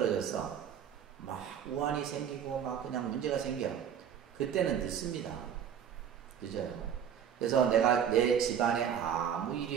막 우환이 생기고 막 그냥 문제가 생겨. 그때는 늦습니다. 그죠? 그래서 내가 내 집안에 아무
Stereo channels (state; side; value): quieter; left; 8.6 dB